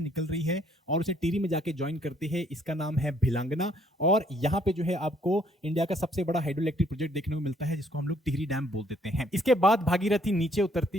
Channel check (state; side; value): normal; both; correlation 0.66